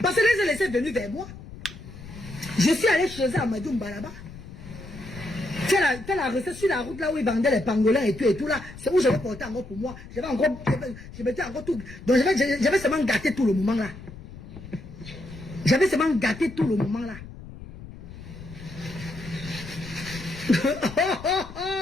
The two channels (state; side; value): noise; left; rumble, 15 dB below the sound